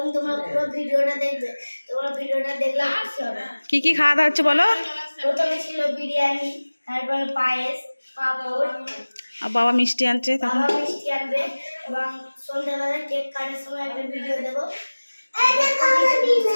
তোমরা পুরো ভিডিওটা দেখবে। তোমরা ভিডিওটা দেখলে খুশি হবে। কি কি খাওয়া দাওয়া হচ্ছে বলো? প্রথমে ছিল বিরিয়ানি, তারপরে পায়েস, পাঁপড়, আর বাবা মিষ্টি আনছে, তখন বাবা মিষ্টি আনবে এবং সন্ধ্যাবেলা কেক কাটার সময় একটা ভিডিও দেবো।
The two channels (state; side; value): inverted; both; correlation -1.00